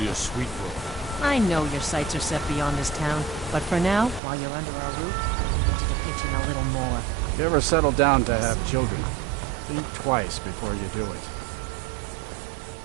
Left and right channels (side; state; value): left; drops out; at 4.2 s